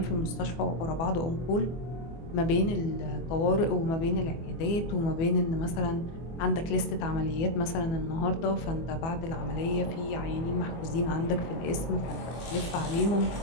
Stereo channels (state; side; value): late; right; 24 ms